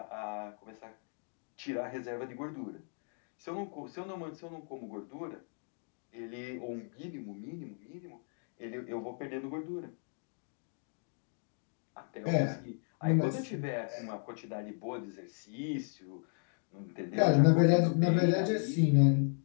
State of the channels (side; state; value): right; silent; 54 dB below the other